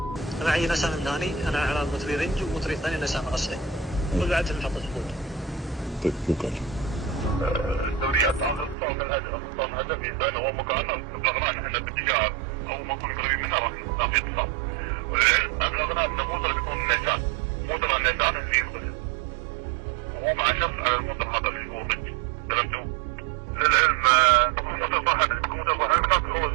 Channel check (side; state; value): left; drops out; at 8.8 s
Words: انا معي نسام ثاني، انا على مطري رنج ومطري ثاني نسام غسل. والوعد في محطة الخوض. طيب شكرا. الدوريات طلب الاجر اصلا هدفي بينه ومقارنه ابلغنا ان احنا بالتجاره او ما نكون قريبين منها راح يطلع. ابلغنا انه مدرب يكون نيسان، مدرب النيسان في القدس وهو مع الشخص المدرب هذا في القدس. تمام. للعلم مدرب صاحب هو يكسر